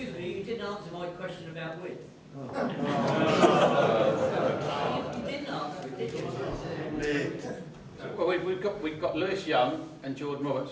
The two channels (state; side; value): identical; both; correlation 1.00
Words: me, you didn't answer my question about width. You didn't answer it, did you? Well, we've got Lewis Young and Jordan Roberts,